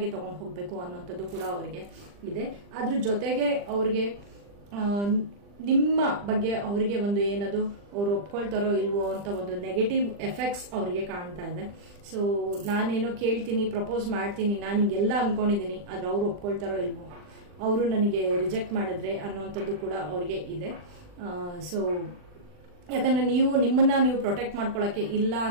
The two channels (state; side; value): late; left; 40 ms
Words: ತಗೊಂಡು ಹೋಗ್ಬೇಕು ಅನ್ನೋಂಥದ್ದು ಕೂಡ ಅವರಿಗೆ ಇದೆ. ಅದ್ರ ಜೊತೆಗೆ ಅವ್ರಿಗೆ ನಿಮ್ಮ ಬಗ್ಗೆ ಅವರಿಗೆ ಒಂದು ಏನದು ಅವ್ರು ಒಪ್ಕೊಳ್ತಾರೋ ಇಲ್ವೋ ಅಂತ ಒಂದು ನೆಗೆಟಿವ್ ಎಫೆಕ್ಟ್ಸ್ ಅವರಿಗೆ ಕಾಣ್ತಾ ಇದೆ. ಸೊ ನಾನೇನೋ ಕೇಳ್ತೀನಿ, ಪ್ರಪೋಸ್ ಮಾಡ್ತೀನಿ, ನಾನು ಹಿಂಗೆಲ್ಲ ಅನ್ಕೊಂಡಿದ್ದೀನಿ, ಆದ್ರೆ ಅವ್ರು ಒಪ್ಕೊಳ್ತಾರೋ ಇಲ್ವೋ, ಅವರು ನನಗೆ ರಿಜೆಕ್ಟ್ ಮಾಡಿದ್ರೆ ಅನ್ನೋಂಥದ್ದು ಕೂಡ ಅವರಿಗೆ ಇದೆ. ಸೊ ಯಾಕಂದ್ರೆ ನಿಮ್ಮನ್ನ ನೀವು ಪ್ರೊಟೆಕ್ಟ್ ಮಾಡ್ಕೊಳಕ್ಕೆ ಇಲ್ಲ